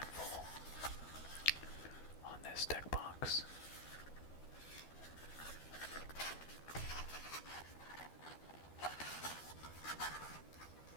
of full on this deck box.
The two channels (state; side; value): late; right; 12 ms